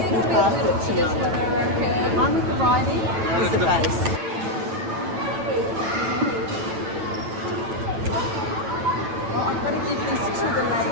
can pass it to me. One with the writing is the base. I'm going to give this to the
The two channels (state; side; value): late; left; 9.1 ms